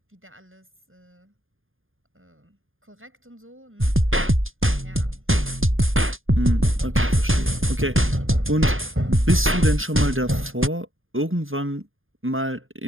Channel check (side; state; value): left; late; 0.59 ms